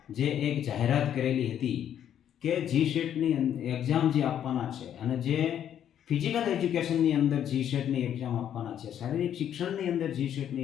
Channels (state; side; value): quieter; right; 9.9 dB